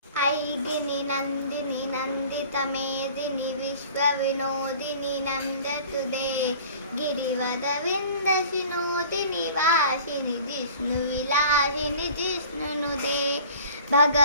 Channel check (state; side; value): inverted; both; correlation -0.46